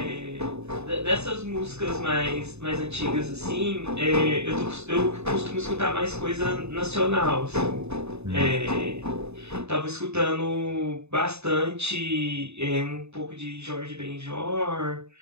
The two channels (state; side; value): late; left; 0.81 ms